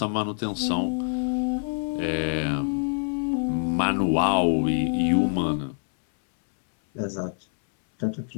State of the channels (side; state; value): right; silent; digital silence